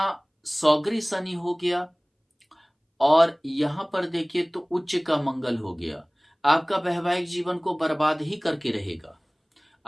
सौगरी शनि हो गया और यहां पर देखिए तो उच्च का मंगल हो गया, आपका वैवाहिक जीवन को बर्बाद ही करके रहेगा।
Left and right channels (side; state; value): both; identical; correlation 1.00